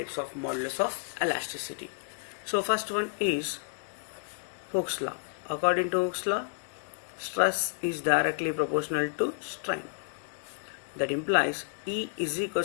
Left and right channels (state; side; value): silent; right; digital silence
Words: of modulus of elasticity. So first one is Hooke's law. According to Hooke's law, stress is directly proportional to strain. That implies E is